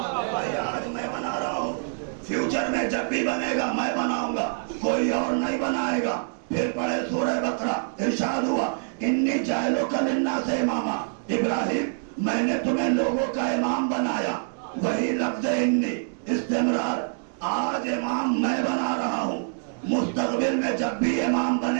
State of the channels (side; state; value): left; silent; digital silence